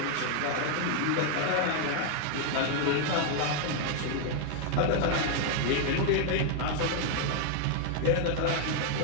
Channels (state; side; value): different; both; correlation 0.00